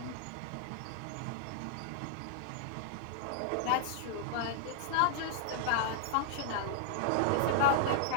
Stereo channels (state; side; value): different; both; correlation -0.01